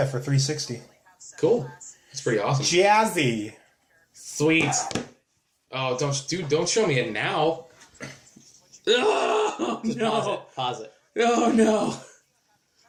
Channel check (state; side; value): identical; both; correlation 1.00